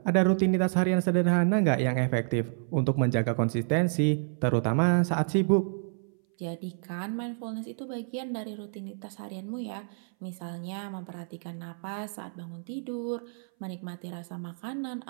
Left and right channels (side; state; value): left; silent; 58 dB below the other